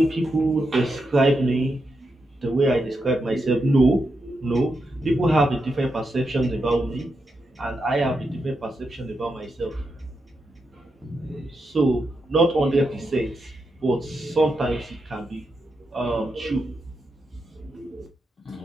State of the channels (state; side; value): normal; both; correlation 0.85